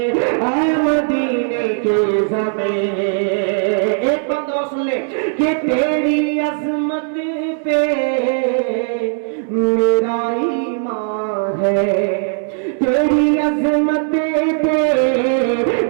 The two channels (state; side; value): silent; left; digital silence